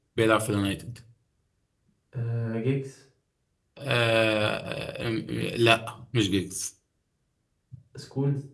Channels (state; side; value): identical; both; correlation 1.00